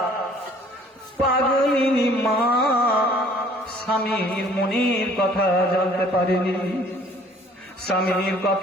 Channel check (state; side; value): normal; both; correlation 0.56